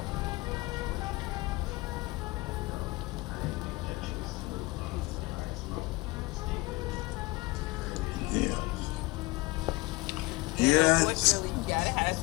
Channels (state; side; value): quieter; right; 22.8 dB